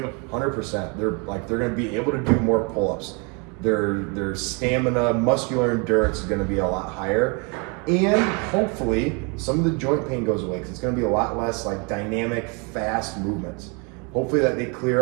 100%. They're going to be able to do more pull-ups. Their stamina, muscular endurance is going to be a lot higher. And hopefully some of the joint pain goes away because it's going to be a lot less like dynamic, fast movements. Hopefully that they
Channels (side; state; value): left; quieter; 33.1 dB